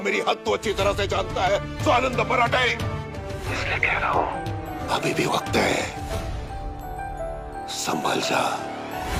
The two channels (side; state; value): both; identical; correlation 1.00